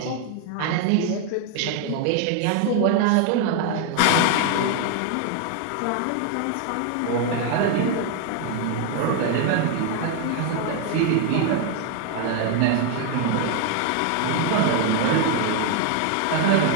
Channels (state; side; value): different; both; correlation 0.00